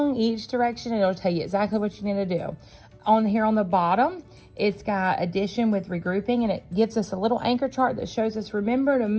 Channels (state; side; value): identical; both; correlation 1.00